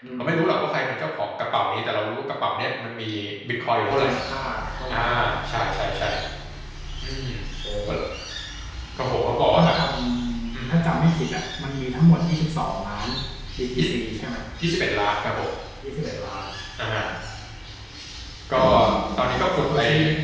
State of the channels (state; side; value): identical; both; correlation 1.00